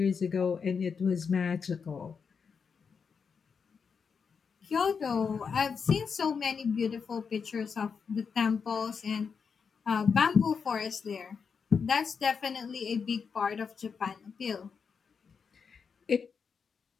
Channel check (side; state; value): right; quieter; 5.9 dB